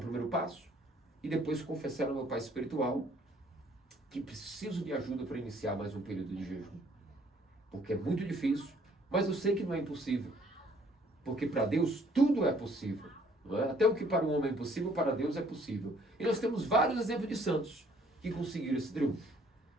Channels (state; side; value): normal; both; correlation 0.61